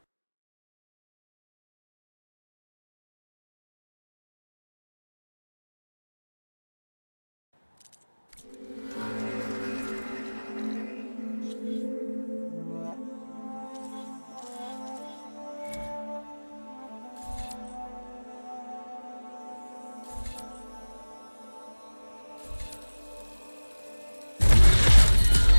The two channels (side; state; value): both; inverted; correlation -1.00